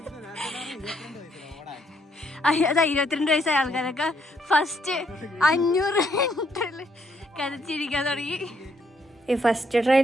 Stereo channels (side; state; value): both; normal; correlation 0.72